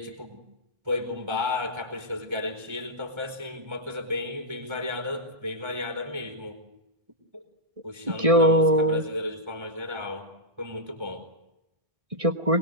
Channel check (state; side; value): late; left; 1.3 ms